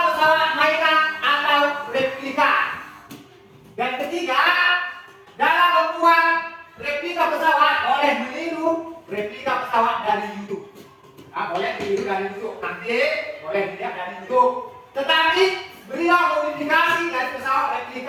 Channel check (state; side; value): identical; both; correlation 1.00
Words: pesawat mainan atau replika. Dan ketiga, dalam membuat replika pesawat boleh meniru replika pesawat dari YouTube. Nah, boleh ditiru dari YouTube, nanti boleh dilihat dari YouTube. Tetapi berilah modifikasi dari pesawat